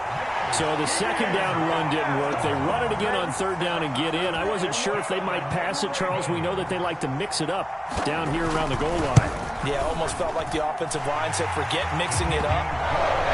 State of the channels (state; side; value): identical; both; correlation 1.00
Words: So the 2nd down run didn't work. They run it again on 3rd down and get in. I wasn't sure if they might pass it, Charles. We know that they like to mix it up down here around the goal line. Yeah, almost felt like the offensive line said, forget mixing it up.